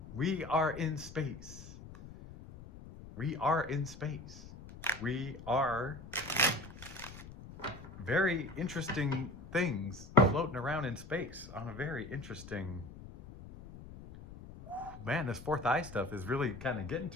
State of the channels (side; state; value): left; noise; rumble, 15 dB below the sound